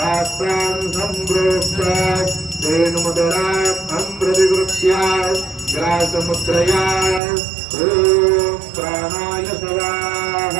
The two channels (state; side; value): drops out; left; at 7.2 s